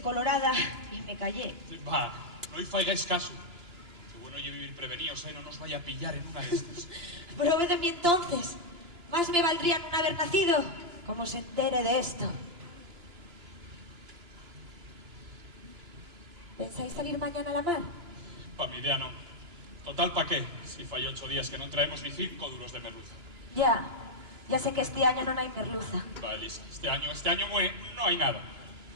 colorada y me callé. Va, no y faigáis caso. Qué bueno yo vivir prevenidos, no nos vaya a pillar en una de estas. Prove de mí entonces. Más me valdría no haber nacido como se entere de esto. ¿Pensáis salir mañana a la mar? Pa' mi idea no. Total, ¿pa' qué? Si fai 8 días que non traemos ni 5 duros de merluza. Ya sé que este año no hay merluza. Va, Elisa, este año no hay nada.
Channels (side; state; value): left; late; 2.9 ms